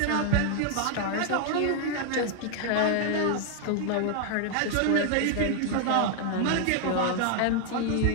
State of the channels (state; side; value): different; both; correlation 0.00